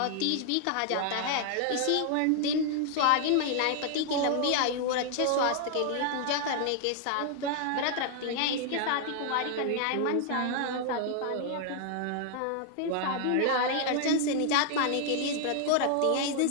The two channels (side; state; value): both; different; correlation 0.00